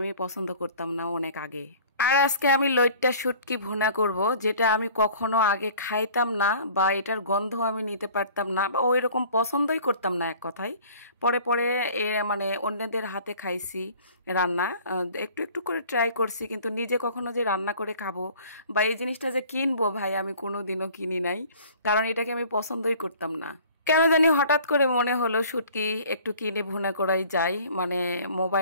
পছন্দ করতাম না অনেক আগে। আর আজকে আমি লইট্টা শুটকি ভুনা করব, যেটা আমি কখনো আগে খাইতাম না, বা এটার গন্ধ আমি নিতে পারতাম না, বা ওই রকম পছন্দই করতাম না এক কথায়। পরে পরে মানে অন্যদের হাতে খাইছি রান্না, একটু একটু করে ট্রাই করছি, কিন্তু নিজে কখনো যে রান্না করে খাবো বা এই জিনিসটা যে কিনবো, ভাই আমি কোনোদিনও কিনি নাই, কারণ এটাকে আমি পছন্দই করতাম না। কেন জানি হঠাৎ করে মনে হলো শুটকি একটু কিনে ভুনা করাই যায়। মানে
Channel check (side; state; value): both; inverted; correlation -0.49